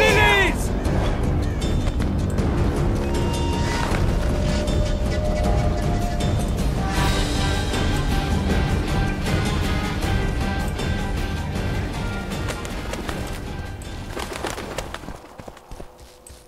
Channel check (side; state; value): both; identical; correlation 1.00